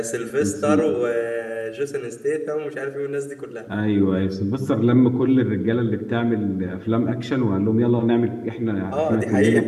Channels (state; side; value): identical; both; correlation 1.00